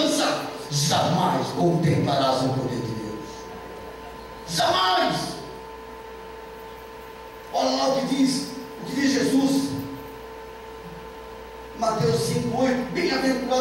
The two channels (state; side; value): identical; both; correlation 1.00